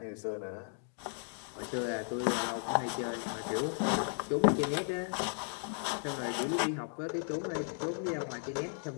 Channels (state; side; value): silent; right; 54 dB below the other